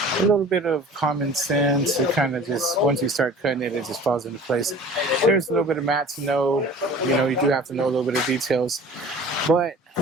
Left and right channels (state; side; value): normal; both; correlation 0.43